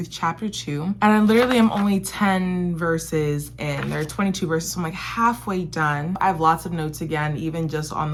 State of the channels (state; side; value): identical; both; correlation 1.00